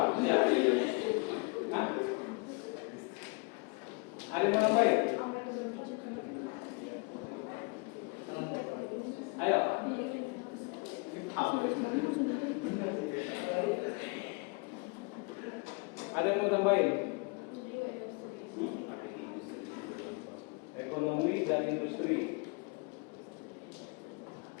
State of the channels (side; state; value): right; quieter; 31.4 dB